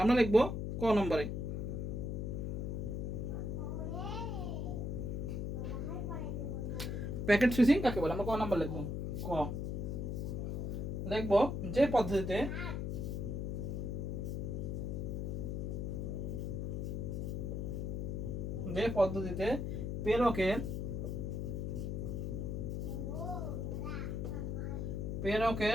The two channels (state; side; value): noise; left; hum, 2 dB below the sound